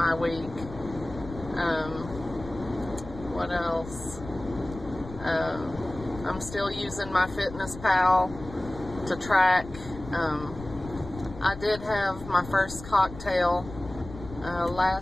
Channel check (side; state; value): left; noise; rumble, 14 dB below the sound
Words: week. What else? I'm still using my Fitness Pal to track. I did have my first cocktail